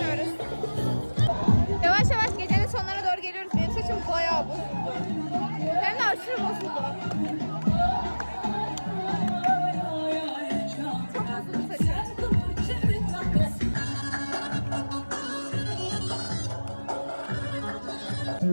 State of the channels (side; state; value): both; inverted; correlation -1.00